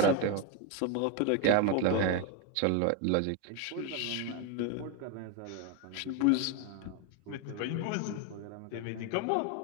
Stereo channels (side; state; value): both; different; correlation 0.01